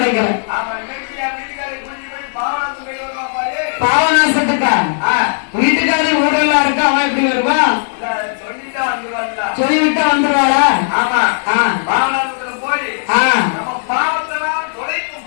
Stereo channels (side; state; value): right; silent; digital silence